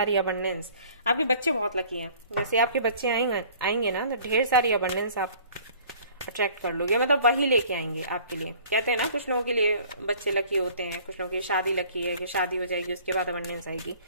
अबंडेंस, आपके बच्चे बहुत लकी हैं, जैसे आपके बच्चे आएंगे ना तो ढेर सारी अबंडेंस आप अट्रैक्ट कर लोगे, मतलब वही लेके आएंगे आपके लिए। कहते हैं ना कुछ लोगों के लिए बच्चे लकी होते हैं, कुछ लोगों की शादी लकी है कि शादी हो जाएगी उसके बाद अबंडेंस आएगी,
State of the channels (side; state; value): both; inverted; correlation -0.52